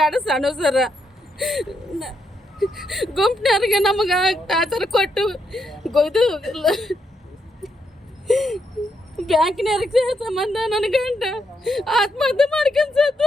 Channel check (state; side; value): normal; both; correlation 0.79